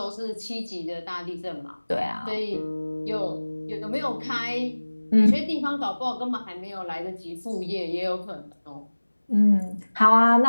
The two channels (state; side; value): inverted; both; correlation -1.00